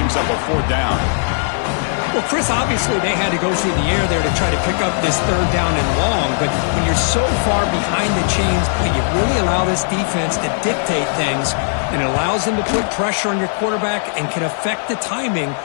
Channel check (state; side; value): silent; right; digital silence